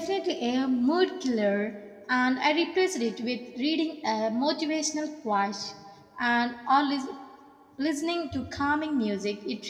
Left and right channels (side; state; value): both; identical; correlation 1.00